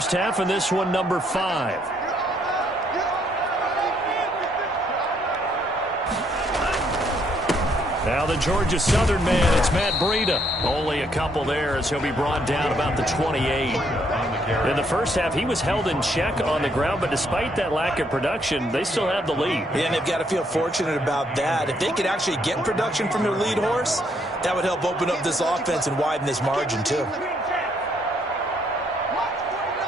half, and this one number 5. Now the Georgia Southern man, it's Matt Breida. Only a couple there as he'll be brought down about the 28. In the first half, he was held in check on the ground, but despite that lack of production, they still have the lead. Yeah, and they've got to feel fortunate about that. If they could actually get production from their lead horse, That would help open up this offense and widen this margin, too.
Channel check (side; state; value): both; normal; correlation 0.71